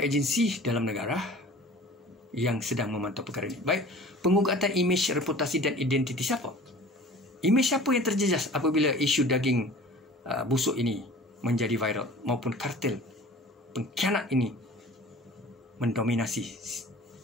agensi dalam negara yang sedang memantau perkara ini. Baik, pengugatan imej, reputasi dan identiti siapa? Imej siapa yang terjejas apabila isu daging busuk ini menjadi viral, maupun kartel pengkhianat ini mendominasi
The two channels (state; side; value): normal; both; correlation 0.44